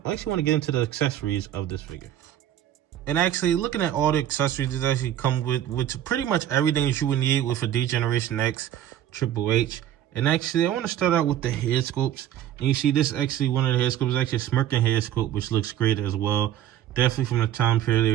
I actually want to get into the accessories of this figure. And actually, looking at all the accessories, it actually come with pretty much everything that you would need with a D-Generation X Triple H. And actually, I want to start out with the head sculpts. And you see this actually, one of the head sculpts is actually a smirking head sculpt, which looks great as well. Definitely from the time period, they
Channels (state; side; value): quieter; left; 11.4 dB